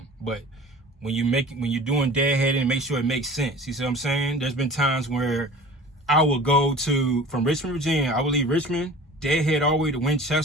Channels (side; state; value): both; normal; correlation 0.42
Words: But when you're doing deadheading, make sure it makes sense. You see what I'm saying? There's been times where I will go from Richmond, Virginia. I will leave Richmond, deadhead all the way to